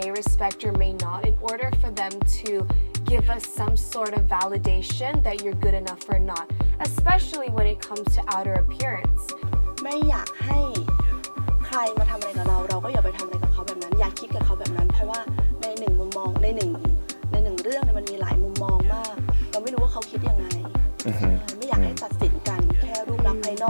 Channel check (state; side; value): inverted; both; correlation -1.00